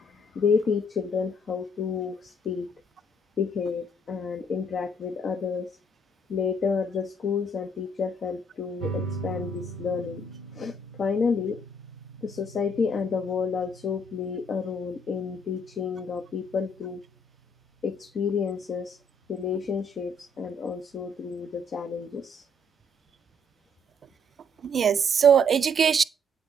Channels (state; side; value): normal; both; correlation 0.66